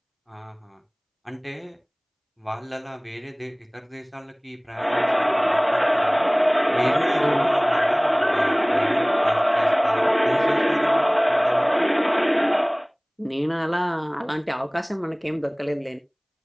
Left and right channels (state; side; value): identical; both; correlation 1.00